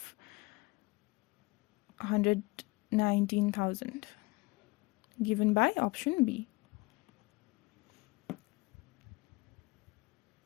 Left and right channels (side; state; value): right; quieter; 23.7 dB